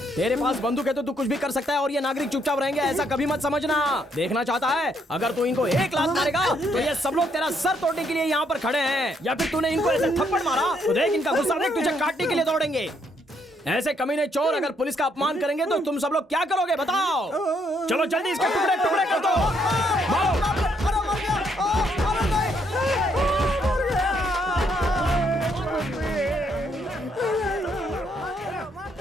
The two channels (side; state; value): both; normal; correlation 0.72